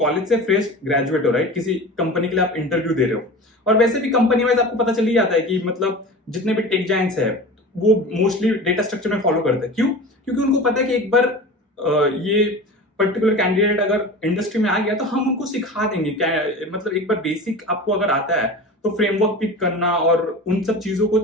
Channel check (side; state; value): both; normal; correlation 0.33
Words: से फ्रेश ग्रेजुएट हो, राइट, किसी कंपनी के लिए आप इंटरव्यू दे रहे हो, और वैसे भी कंपनी वाइज आपको पता चल ही जाता है कि मतलब जितने भी टेक जायंट्स है वो मोस्टली डेटा स्ट्रक्चर में फॉलो करते हैं। क्यों? क्योंकि उनको पता है कि एक बार ये पर्टिकुलर कैंडिडेट अगर इंडस्ट्री में आ गया तो हम उनको सिखा देंगे। मतलब एक बार बेसिक आपको अगर आता है तो फ्रेमवर्क पिक करना और उन सब चीजों को